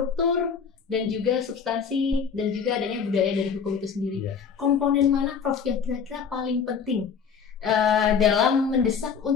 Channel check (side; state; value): right; quieter; 6.4 dB